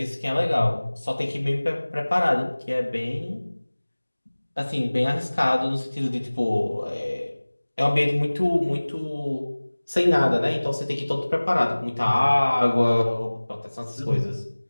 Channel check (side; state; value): both; inverted; correlation -1.00